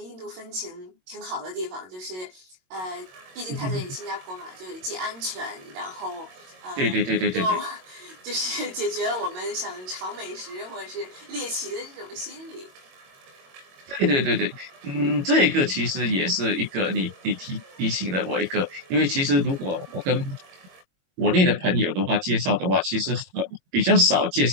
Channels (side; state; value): left; late; 22 ms